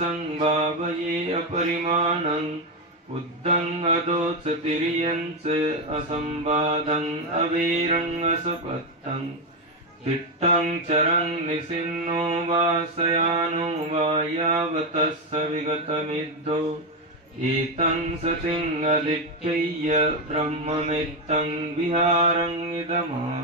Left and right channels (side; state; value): both; normal; correlation 0.08